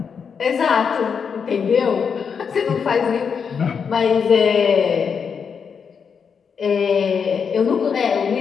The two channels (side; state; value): right; quieter; 6.4 dB